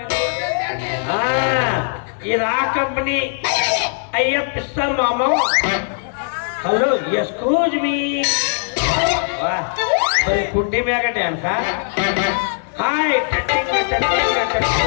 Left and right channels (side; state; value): right; silent; 60 dB below the other